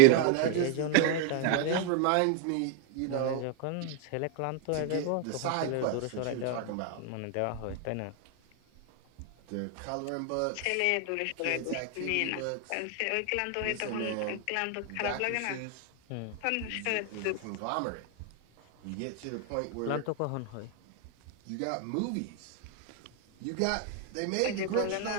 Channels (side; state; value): both; different; correlation 0.01